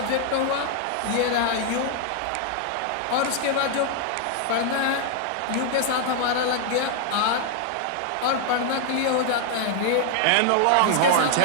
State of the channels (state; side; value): different; both; correlation 0.00